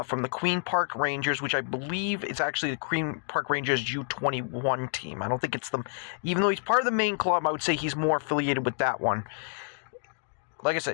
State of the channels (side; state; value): right; silent; digital silence